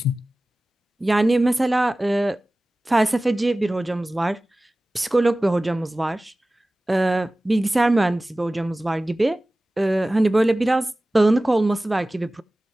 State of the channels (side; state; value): both; normal; correlation 0.97